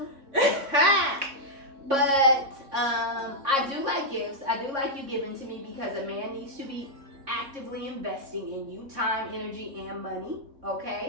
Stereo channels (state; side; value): late; left; 3.6 ms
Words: But I do like gifts. I do like you giving to me because a man needs to be actively investing in you, time, energy, and money.